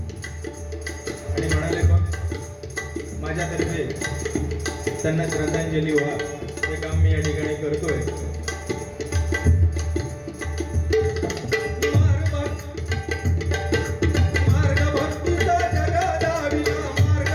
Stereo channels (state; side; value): identical; both; correlation 1.00